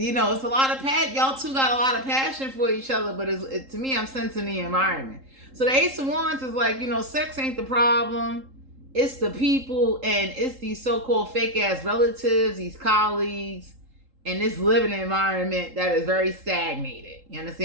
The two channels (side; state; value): left; late; 3.8 ms